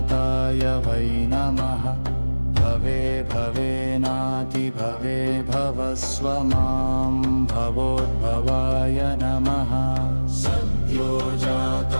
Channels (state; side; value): inverted; both; correlation -1.00